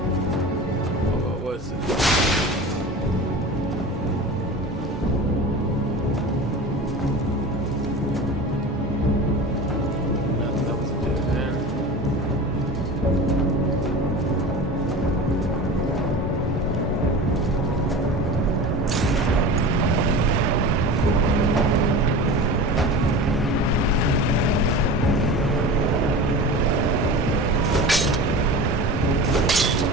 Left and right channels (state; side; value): normal; both; correlation 0.33